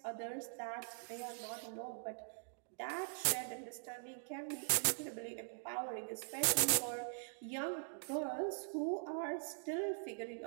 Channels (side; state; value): left; silent; digital silence